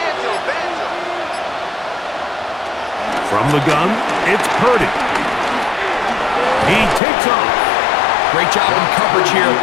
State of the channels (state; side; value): drops out; right; at 7.0 s